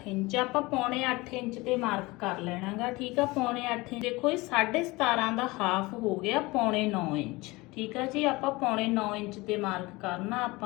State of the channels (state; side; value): quieter; right; 22.4 dB